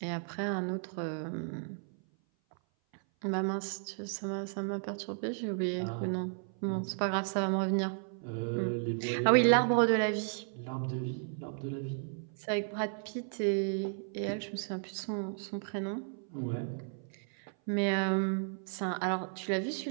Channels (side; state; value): left; silent; 55 dB below the other